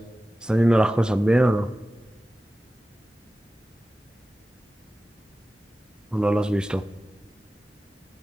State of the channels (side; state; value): both; normal; correlation 0.95